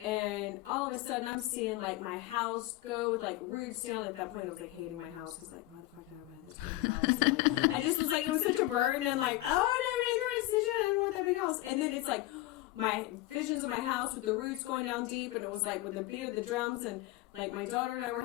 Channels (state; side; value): quieter; right; 17.3 dB